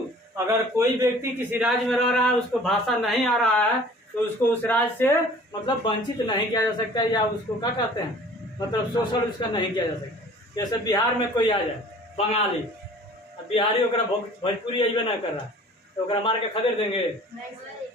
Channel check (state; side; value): normal; both; correlation 0.49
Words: अगर कोई व्यक्ति किसी राज्य में रह रहा है, उसको भाषा नहीं आ रहा है, तो उसको उस राज्य से मतलब वंचित नहीं किया जा सकता, या उसको क्या कहते हैं, मतलब शोषण उसका नहीं किया जा सकता। जैसे बिहार में कोई आ जाए बंगाली, अब बिहारी ओकरा भोजपुरी अइबे ना कर रहा, तो ओकरा मार के खदेड़ देंगे,